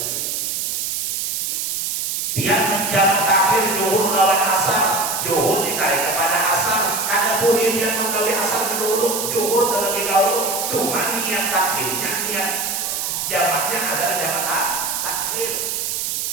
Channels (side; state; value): right; noise; hiss, 1 dB below the sound